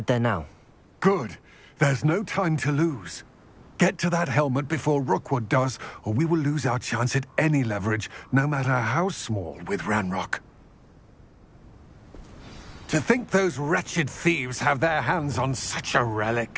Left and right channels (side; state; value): both; identical; correlation 1.00